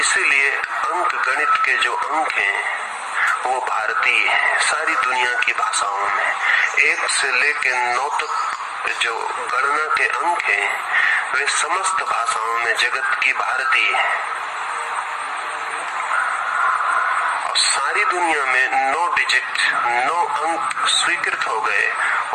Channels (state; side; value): identical; both; correlation 1.00